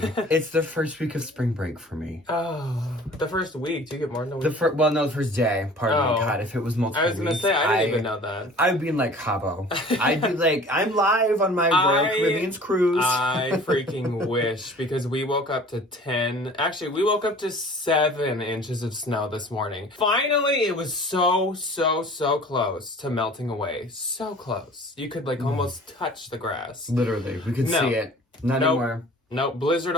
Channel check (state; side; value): normal; both; correlation 0.46